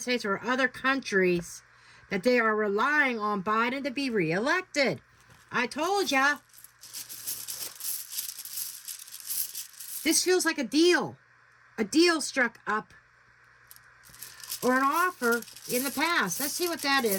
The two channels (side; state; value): both; identical; correlation 1.00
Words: States or other countries that they are relying on Biden to be reelected. I told ya. This feels like a deal. A deal struck up. Or an offer in the past. Let's see what that